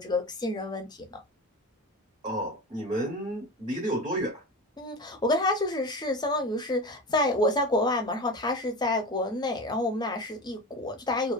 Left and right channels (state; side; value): normal; both; correlation 0.28